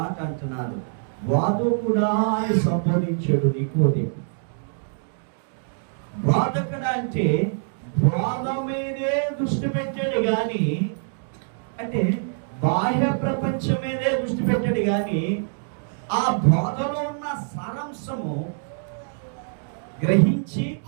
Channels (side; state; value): left; silent; digital silence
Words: అంటున్నారు. వాదకుడా అని సంబోధించాడు నికోదేము. వాదకుడు అంటే బోధ మీదే దృష్టి పెట్టాడు గాని, అంటే బాహ్య ప్రపంచం మీదే దృష్టి పెట్టాడు గాని ఆ బోధలో ఉన్న సారాంశము గ్రహించి